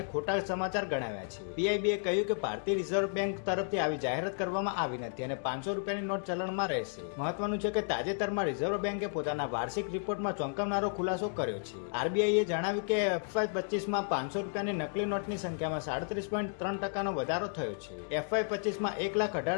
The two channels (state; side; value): silent; right; 56 dB below the other